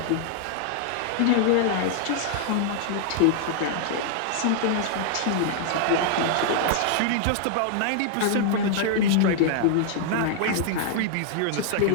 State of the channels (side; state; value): both; different; correlation -0.01